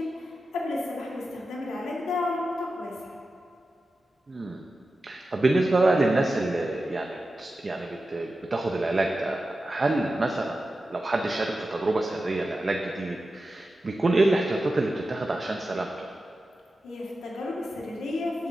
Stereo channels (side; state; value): both; normal; correlation 0.92